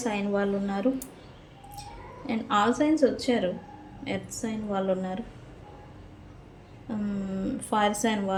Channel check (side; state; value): both; identical; correlation 1.00